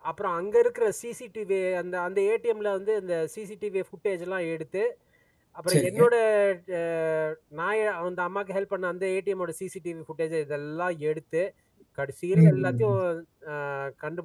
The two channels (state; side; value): identical; both; correlation 1.00